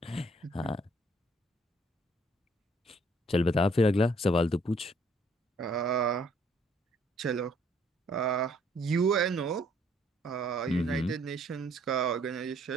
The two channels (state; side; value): normal; both; correlation 0.64